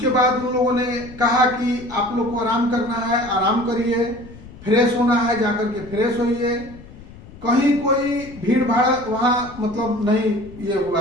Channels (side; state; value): left; noise; rumble, 18 dB below the sound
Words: बाद उन लोगों ने कहा कि आप लोग को आराम करना है, आराम करिए, फ्रेश होना है जाकर के फ्रेश होइए। कहीं कोई भीड़ भाड़ वहां मतलब नहीं ये